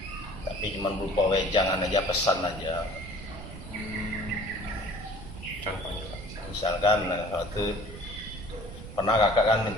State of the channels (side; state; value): right; noise; rumble, 12 dB below the sound